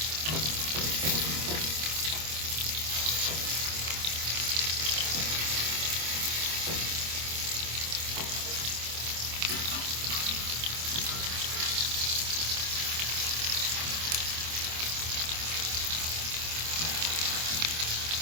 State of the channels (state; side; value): late; left; 26 ms